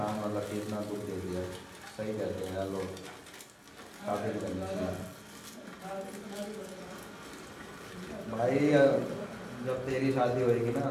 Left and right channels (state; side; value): identical; both; correlation 1.00